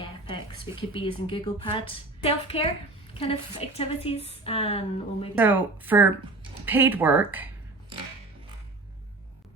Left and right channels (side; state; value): left; quieter; 3.1 dB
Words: PECs. We could be using Google Pad. Self-care kind of activities, and we'll maybe. So for paid work,